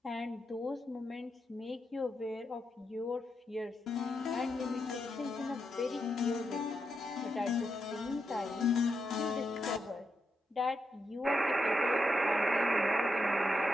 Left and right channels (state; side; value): normal; both; correlation 0.84